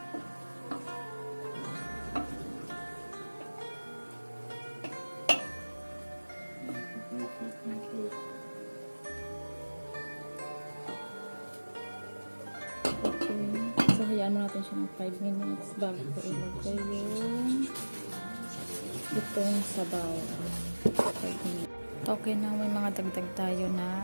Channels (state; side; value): inverted; both; correlation -1.00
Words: hayaan mo natin siya ng 5 minutes bago ko ilagay yung itong sabaw. 5 minutes. Okay na, may mga dagdag tayo